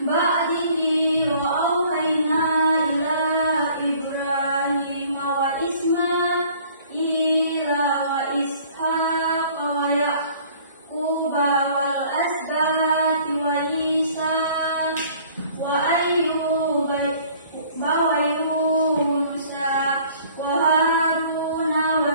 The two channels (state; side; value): inverted; both; correlation -0.54